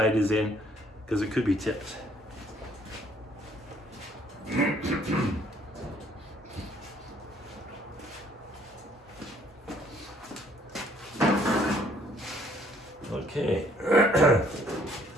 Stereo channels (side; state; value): both; normal; correlation 0.62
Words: is in, because it could be tipped. Okay.